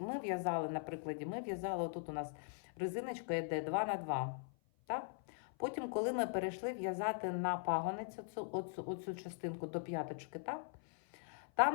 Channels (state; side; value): silent; right; 50 dB below the other